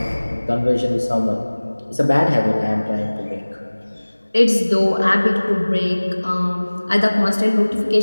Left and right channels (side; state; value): both; inverted; correlation -1.00